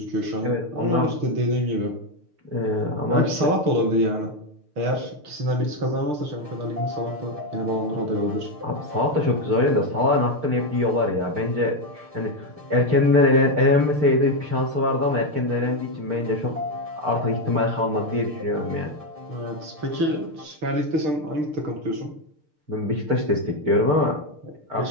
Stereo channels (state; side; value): late; left; 6.7 ms